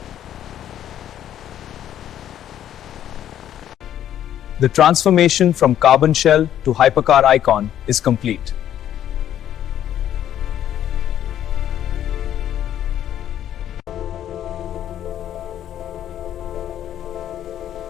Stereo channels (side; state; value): right; quieter; 10.9 dB